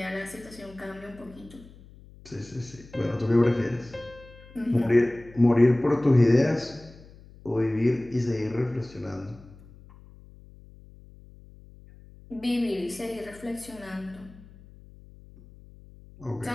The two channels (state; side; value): noise; left; hum, 22 dB below the sound